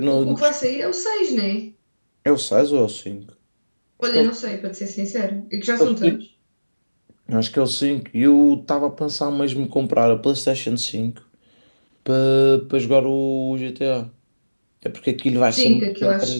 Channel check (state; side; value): inverted; both; correlation -1.00